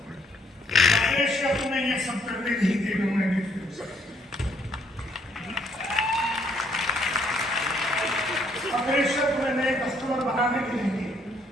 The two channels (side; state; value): both; normal; correlation 0.68